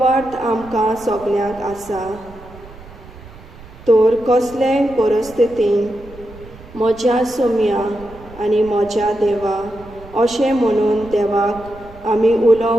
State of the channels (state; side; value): noise; right; rumble, 19 dB below the sound